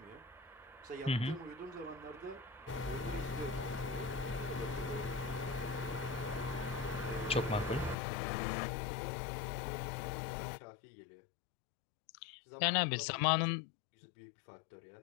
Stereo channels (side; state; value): right; drops out; at 8.0 s